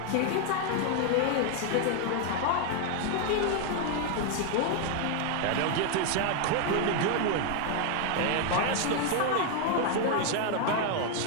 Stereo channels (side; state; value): both; different; correlation 0.00